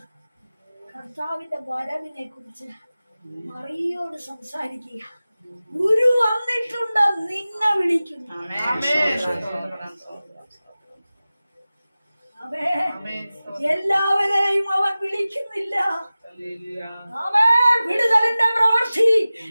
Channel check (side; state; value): both; inverted; correlation -0.97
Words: കർത്താവിന്റെ വരവിനെ കുറിച്ച് മറിയോട് സംസാരിക്കുക. ഗുരു വന്നിട്ടുണ്ട്, നിന്നെ വിളിക്കുന്നു. അവേ എല്ലാവരെയും അവൻ വിളിക്കുന്നില്ല. അവേ വിടുതലിന്റെ പ്രവൃത്തി